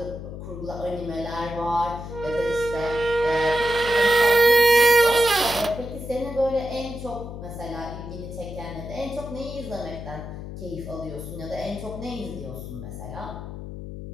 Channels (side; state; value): left; noise; hum, 9 dB below the sound